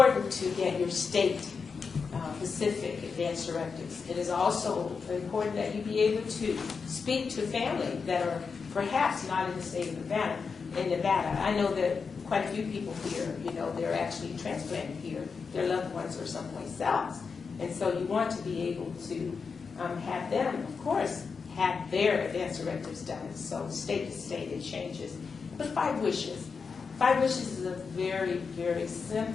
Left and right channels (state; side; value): quieter; right; 5.3 dB